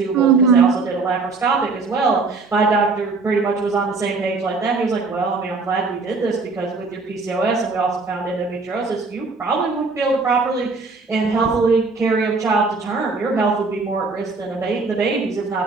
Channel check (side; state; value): left; quieter; 4.0 dB